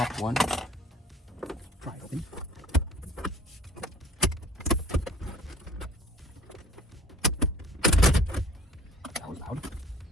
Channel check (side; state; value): both; normal; correlation 0.51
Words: one, pry it open. That was loud.